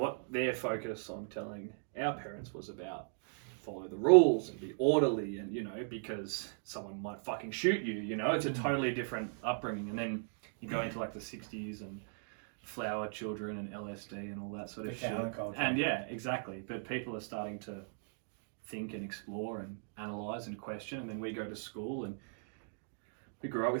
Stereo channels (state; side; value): silent; left; digital silence